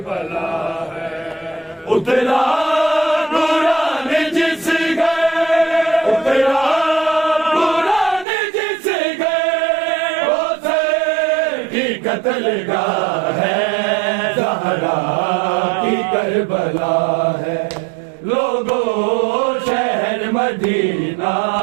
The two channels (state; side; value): drops out; left; at 8.2 s